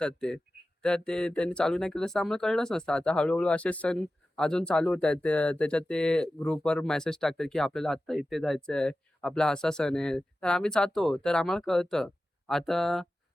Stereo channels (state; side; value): normal; both; correlation 0.94